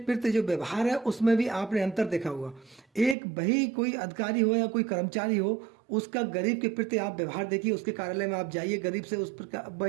जो व्यवहार है उसमें भी आपने अंतर देखा होगा। एक वही कोई अधिकारी हो या कोई कर्मचारी हो, उसका गरीब के प्रति आप व्यवहार देखिए, उसके कार्यालय में आप जाइए, गरीब से उस प्रकार वह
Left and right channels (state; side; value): drops out; left; at 3.2 s